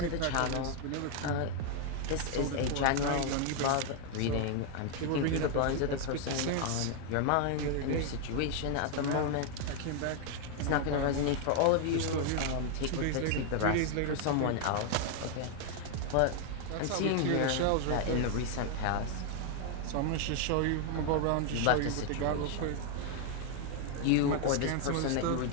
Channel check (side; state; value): both; different; correlation 0.00